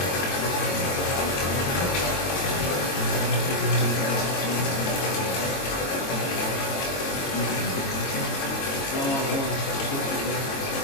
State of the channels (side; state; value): right; late; 22 ms